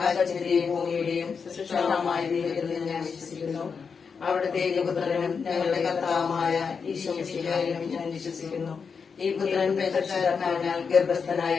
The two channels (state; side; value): quieter; right; 5.7 dB